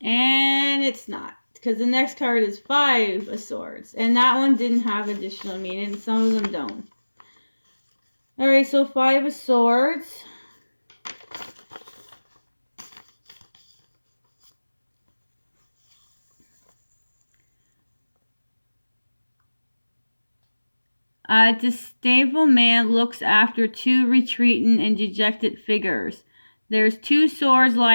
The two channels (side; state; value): both; inverted; correlation -1.00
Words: And it's not, because the next card is 5 of Swords. And that one didn't have additional meaning. Some of them don't. Alright, so 5 of Swords. A disdainful man looks after 2 retreating and dejected figures. There's 2 swords